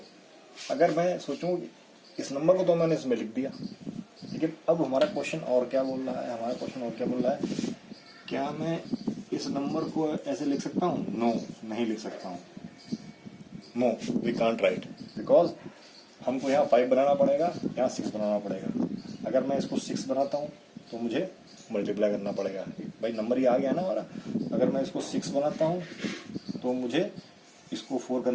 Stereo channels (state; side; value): identical; both; correlation 1.00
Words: अगर मैं सोचूं इस नंबर को तो मैंने इसमें लिख दिया, लेकिन अब हमारा क्वेश्चन और क्या बोल रहा है, क्या मैं इस नंबर को ऐसे लिख सकता हूँ? नो, नहीं लिख सकता हूँ। No, we can't write, because हमको यहाँ 5 बनाना पड़ेगा, यहाँ 6 बनाना पड़ेगा। अगर मैं इसको 6 बनाता हूँ तो मुझे मल्टीप्लाई करना पड़ेगा, भाई नंबर ये आ गया ना हमारा। अगर मैं इसको 6 बनाता हूँ तो मुझे इसको 4